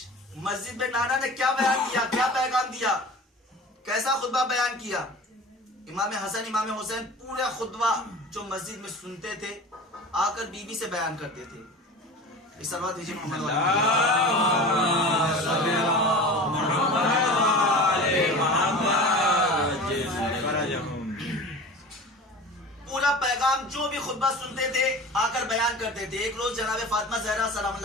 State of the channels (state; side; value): normal; both; correlation 0.36